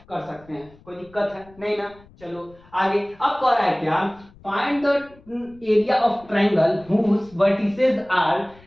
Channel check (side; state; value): left; noise; rumble, 26 dB below the sound